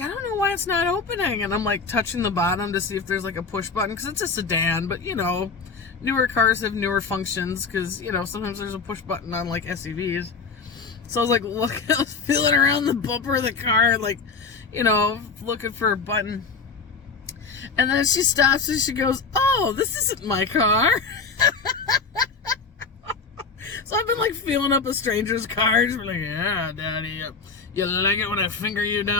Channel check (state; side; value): quieter; right; 4.8 dB